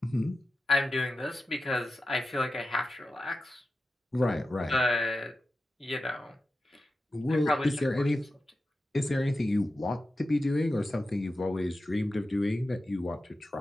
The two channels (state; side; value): normal; both; correlation 0.92